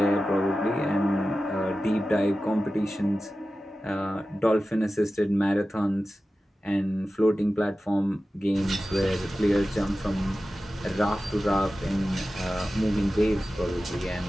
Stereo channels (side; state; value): both; normal; correlation 0.94